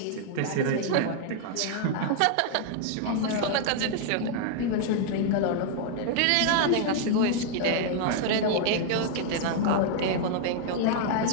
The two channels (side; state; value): both; different; correlation 0.00